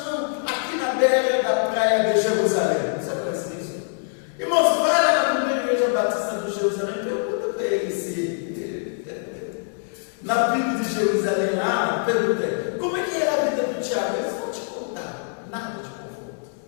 aqui na beira da praia de Jerusalém. Você conhece isso? Irmãos, vai lá na primeira igreja batista de Jerusalém e pergunta para ele se na Bíblia de Jerusalém lá, perguntei, como é que era a vida do Tiago? Eles vão te contar, nada de conforto.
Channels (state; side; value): silent; right; 63 dB below the other